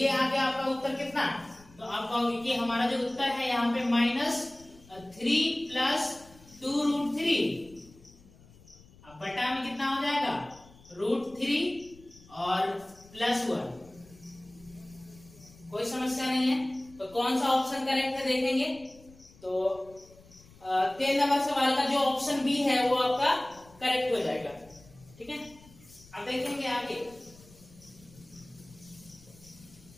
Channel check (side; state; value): left; noise; rumble, 24 dB below the sound